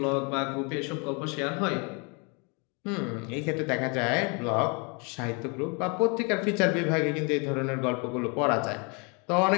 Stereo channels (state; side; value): quieter; right; 32.5 dB